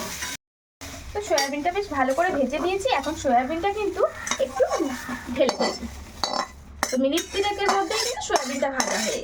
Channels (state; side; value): identical; both; correlation 1.00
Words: তো সয়াবিনটা বেশ ভালো করে ভেজে দিয়েছি, এখন সয়াবিনটা কিন্তু একটু ঢেলে দেবো। তো মিনিট 3-এর মধ্যেই কিন্তু সয়াবিনটা ভাজা হয়ে